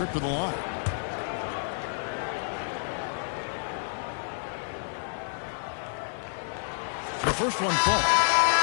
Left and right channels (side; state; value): right; silent; digital silence